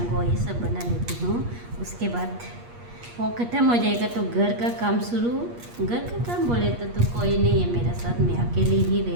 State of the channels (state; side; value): late; left; 8.4 ms